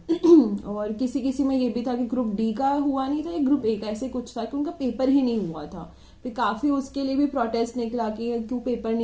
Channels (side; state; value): both; identical; correlation 1.00